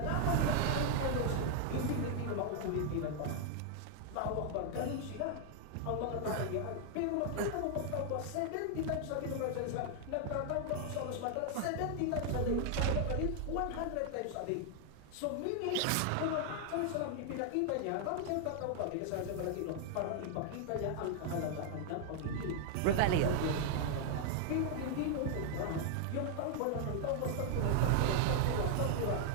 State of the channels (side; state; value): both; different; correlation 0.00